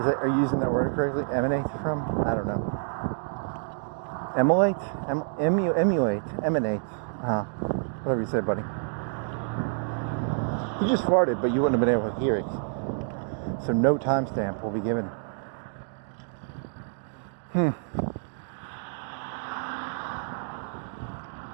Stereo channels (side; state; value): left; silent; 59 dB below the other